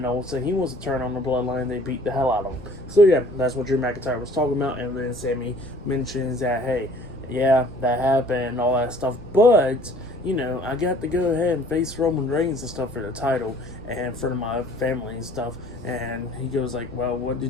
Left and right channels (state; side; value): normal; both; correlation 0.53